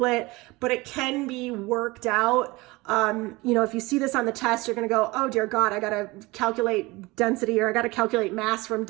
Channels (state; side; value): quieter; left; 22.4 dB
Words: but it can be worked out. You know, if you see this on the test, you're going to go, oh dear God, I got to calculate density, or I got to calculate mass from